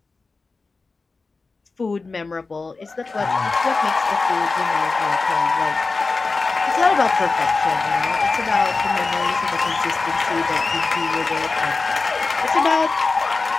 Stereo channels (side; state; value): right; quieter; 3.9 dB